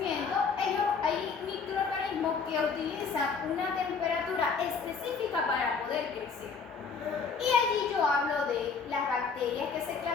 hay microorganismos que utilizan una temperatura específica para poder crecer. Y allí yo hablo de las bacterias que se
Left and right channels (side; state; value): right; quieter; 5.4 dB